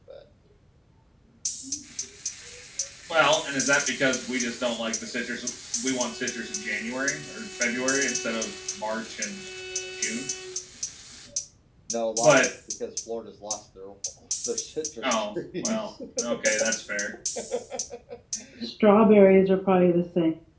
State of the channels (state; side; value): identical; both; correlation 1.00